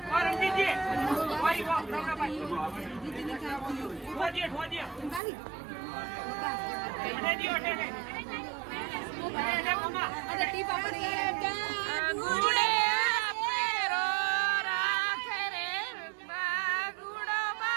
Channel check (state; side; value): drops out; left; at 5.2 s